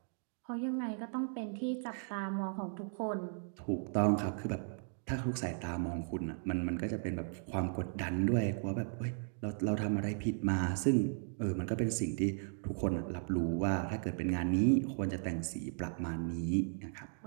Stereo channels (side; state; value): left; silent; 54 dB below the other